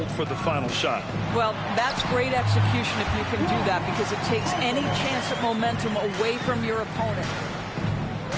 for the final shot. Well, that's great execution if you can do that, because it takes any chance at momentum away from your opponent.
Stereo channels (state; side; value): identical; both; correlation 1.00